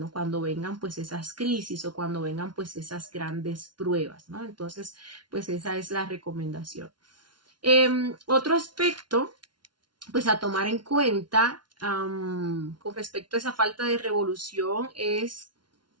cuando vengan pues esas crisis o cuando vengan pues esas grandes pruebas, ¿no? Entonces, pues esa es la recomendación. Otro aspecto, pues a tomar en cuenta con respecto a esa falta de revolución es,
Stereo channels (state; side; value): late; left; 0.71 ms